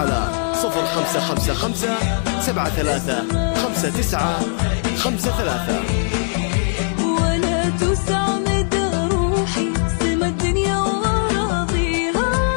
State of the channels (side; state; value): right; silent; 66 dB below the other